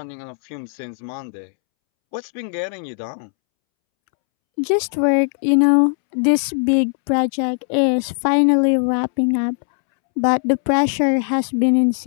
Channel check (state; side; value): silent; right; 66 dB below the other